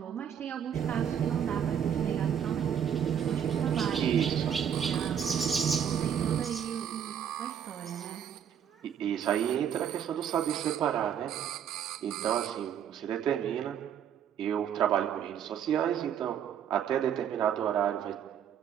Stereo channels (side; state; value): left; quieter; 8.8 dB